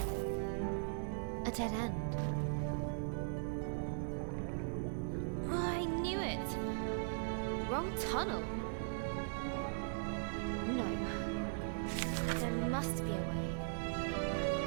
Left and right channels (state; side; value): silent; left; 52 dB below the other